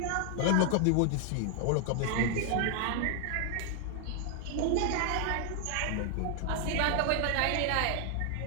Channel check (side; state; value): both; different; correlation 0.00